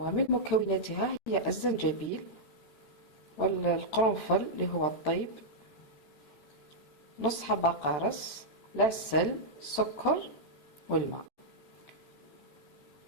مكوناتها هي الزنجبيل والقرنفل اللي هو الطيب، نص حبة قارص، العسل، السكر والماء.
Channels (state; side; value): late; right; 13 ms